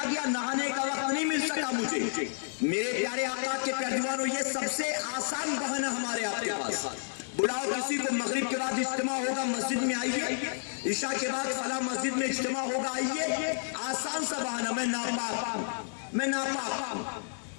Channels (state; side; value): silent; right; digital silence